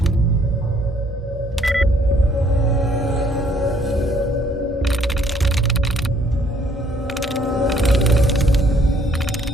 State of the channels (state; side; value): normal; both; correlation 0.64